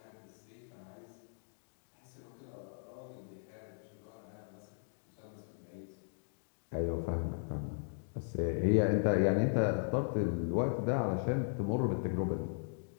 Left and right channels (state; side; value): silent; right; digital silence